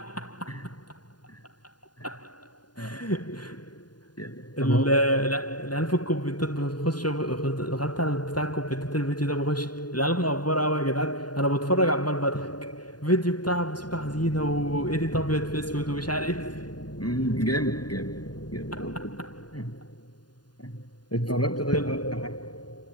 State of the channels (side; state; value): right; late; 0.70 ms